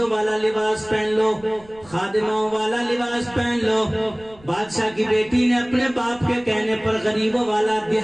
والا لباس پہن لو، خادموں والا لباس پہن لو۔ بادشاہ کی بیٹی نے اپنے باپ کے کہنے پر غریبوں والا،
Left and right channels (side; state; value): right; noise; rumble, 25 dB below the sound